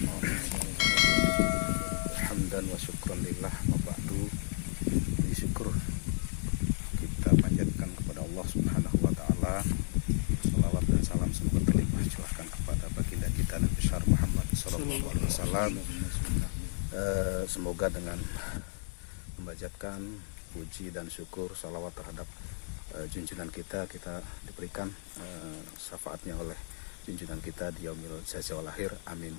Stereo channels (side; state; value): right; silent; digital silence